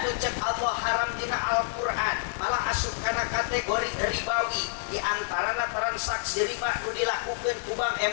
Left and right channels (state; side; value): silent; right; digital silence